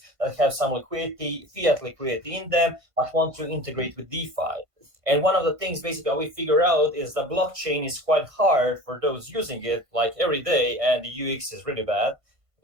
that have some liquidity, fiat liquidity in them, but want to integrate with DeFi. And one of the things basically we figure out is the blockchain is quite hard for those using it like every day, and the UX is really bad.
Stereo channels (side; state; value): left; late; 1.5 ms